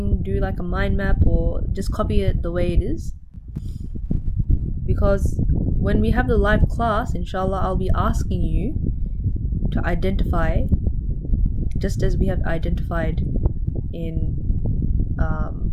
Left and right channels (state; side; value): identical; both; correlation 1.00